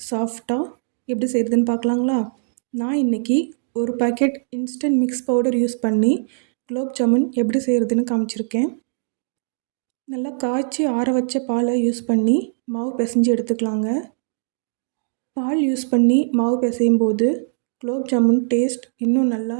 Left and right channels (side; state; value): left; silent; digital silence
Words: சாஃப்டாக எப்படி செய்கிறதுன்னு பார்க்கலாங்களா? நான் இன்றைக்கி ஒரு packet instant mix powder use பண்ணி குலோப் ஜாமுன் எப்படி செய்கிறதுன்னு காமிச்சிருக்கேன். நல்லா காய்ச்சி ஆற வச்ச பாலை யூஸ் பண்ணி மாவு பிசைஞ்சு எடுத்துக்கலாங்க. பால் யூஸ் பண்ணி மாவு பிசையும் போது குலோப் ஜாமுன் டேஸ்ட் இன்னும் நல்லா